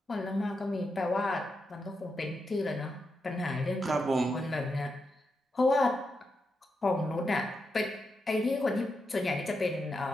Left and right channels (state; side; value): normal; both; correlation 0.85